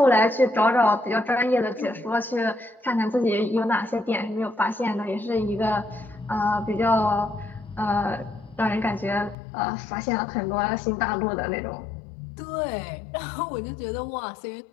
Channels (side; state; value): right; drops out; at 9.3 s